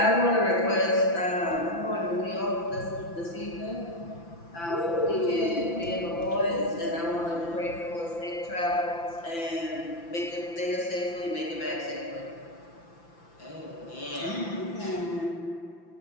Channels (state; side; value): late; right; 5.9 ms